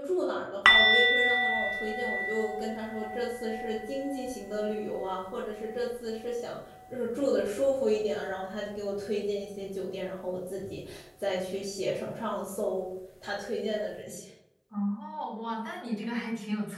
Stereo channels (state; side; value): identical; both; correlation 1.00